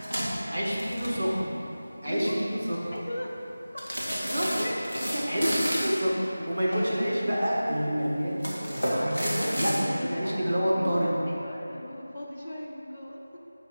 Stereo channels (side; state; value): both; inverted; correlation -0.97